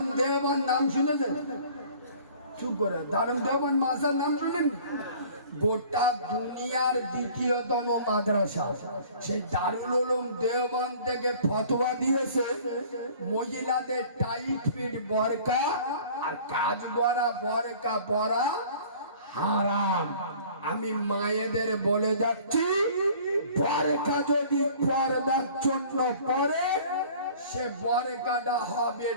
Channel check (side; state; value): both; inverted; correlation -0.49